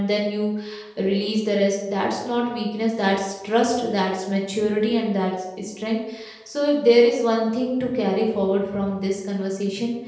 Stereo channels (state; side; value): identical; both; correlation 1.00